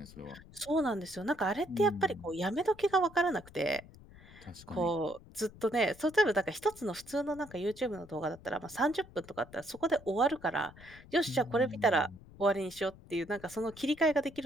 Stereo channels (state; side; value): noise; left; rumble, 20 dB below the sound